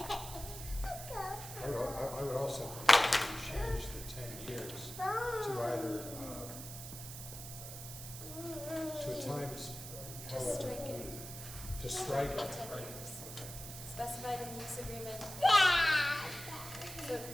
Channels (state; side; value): noise; right; hiss, 10 dB below the sound